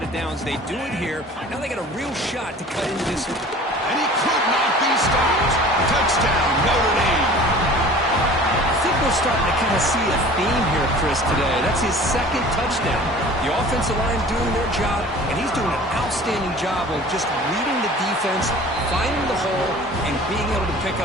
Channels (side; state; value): both; normal; correlation 0.44